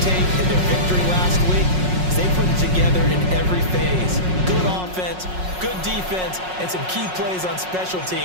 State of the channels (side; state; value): left; late; 5.5 ms